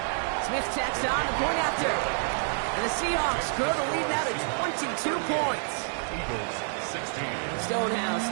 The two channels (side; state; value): left; silent; 59 dB below the other